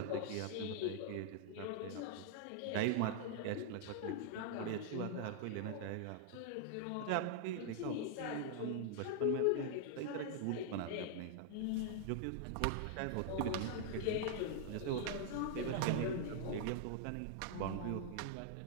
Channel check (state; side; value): different; both; correlation -0.01